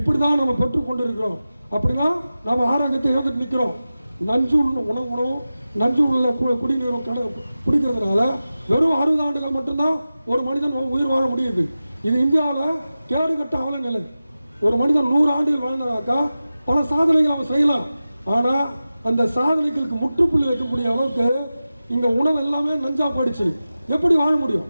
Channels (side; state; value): both; inverted; correlation -0.94